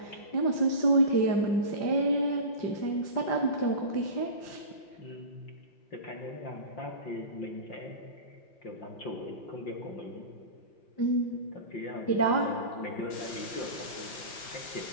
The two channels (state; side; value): late; right; 5.7 ms